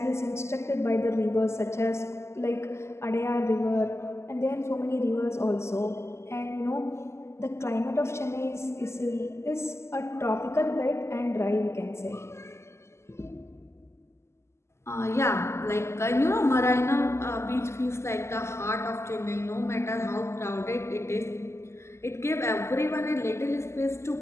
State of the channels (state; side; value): late; right; 0.13 ms